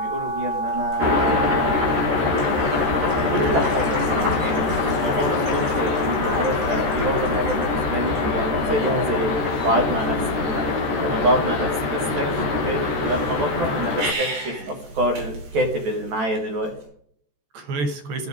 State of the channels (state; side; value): late; left; 14 ms